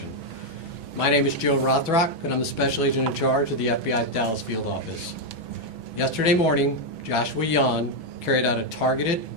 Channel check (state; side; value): late; left; 6.1 ms